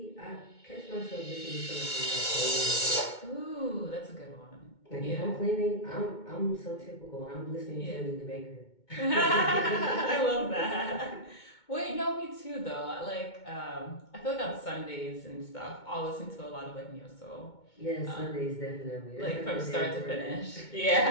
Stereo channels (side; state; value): right; late; 2.2 ms